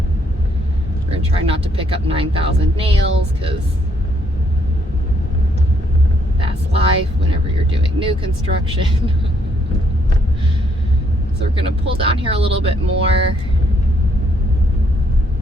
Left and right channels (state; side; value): normal; both; correlation 0.70